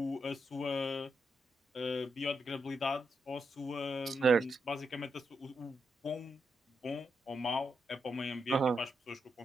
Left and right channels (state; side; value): normal; both; correlation 0.83